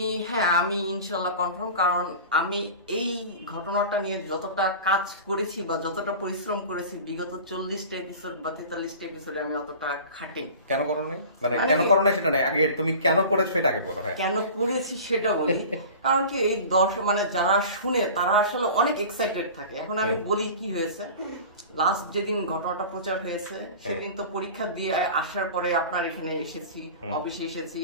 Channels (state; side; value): inverted; both; correlation -0.37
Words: আমি ইনশাল্লাহ কনফার্ম, কারণ আমি এই ঘটনাটা নিয়ে যতটা কাজ করেছি বা যতটা পরিশ্রম করেছি বিগত 40টা এপিসোড বা 43টা এপিসোডে আমি অতটা খাটিনি। কেন করো নাই? মানে কেন করো না সেটা নাই, আগে তুমি কেন করেছো এটা আগে বলো। হ্যাঁ, কেন করেছি সেটা বলি। কারণ কি, এই দর্শক মানে যারা শুনে তারা আসলে অনেক এক্সাইটেড থাকে। এখন আমি বলি কি হয়েছে। লাস্ট যেদিন ঘটনাটা প্রচার হয়েছে সেদিন তো পরীক্ষা দিয়ে আসার পরে আপনার এখানে এসেছি, অফিসে এসেছি,